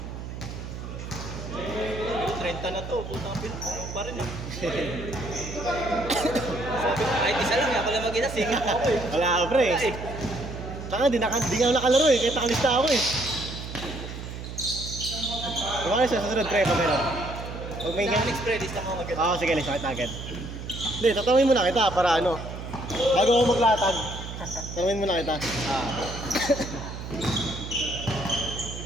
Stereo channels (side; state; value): right; noise; hum, 9 dB below the sound